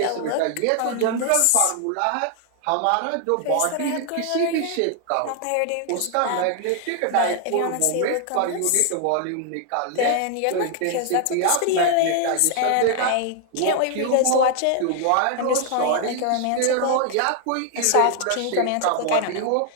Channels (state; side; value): different; both; correlation 0.00